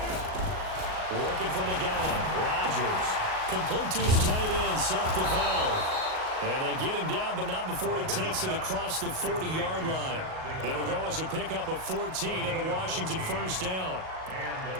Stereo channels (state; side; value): late; left; 38 ms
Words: Working from the gun, Rodgers. Complete to his tight end, Seth DeVal. And they get him down, but not before he takes it across the 40-yard line. It'll go as a pickup of 14 and a Washington first down.